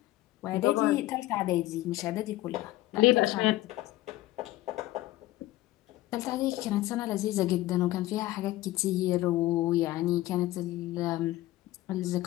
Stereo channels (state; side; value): quieter; right; 16.5 dB